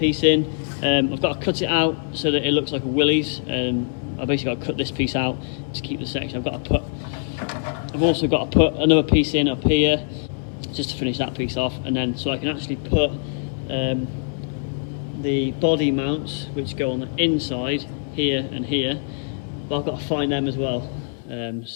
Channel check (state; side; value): silent; right; digital silence